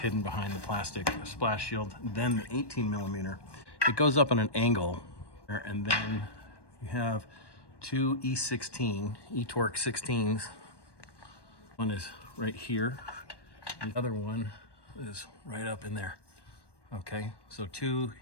behind the plastic splash shield. Then the 18mm, it goes up on an angle, and then you have 2 E16, E-torx 16s. One is right here. The other one is right up in there. Okay, so two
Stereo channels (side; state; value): right; late; 1.1 ms